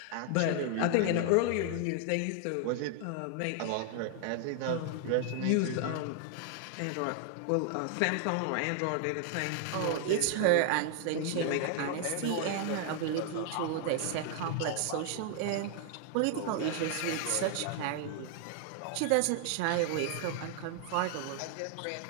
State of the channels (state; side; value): different; both; correlation 0.00